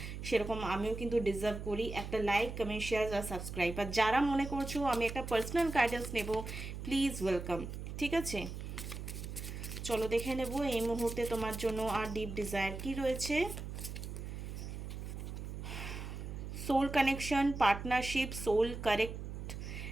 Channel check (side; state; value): right; noise; hum, 7 dB below the sound